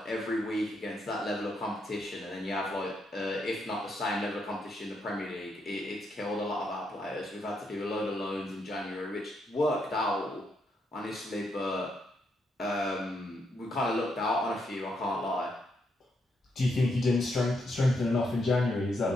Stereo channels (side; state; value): both; normal; correlation 0.78